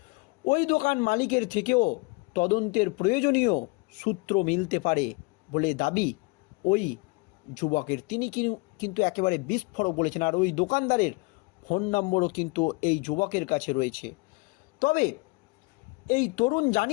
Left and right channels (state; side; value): quieter; right; 27.7 dB